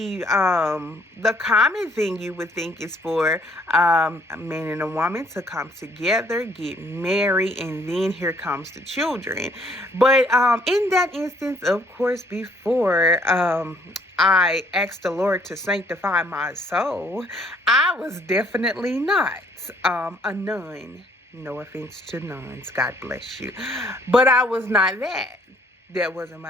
common thing you would think is for a man and a woman to come together, get married, and then here comes the children. But in that instance, of course, before I asked the Lord to sanctify my soul, I was definitely not a nun. No offense to nuns, God bless you. But I was not that. That wasn't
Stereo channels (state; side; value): normal; both; correlation 0.64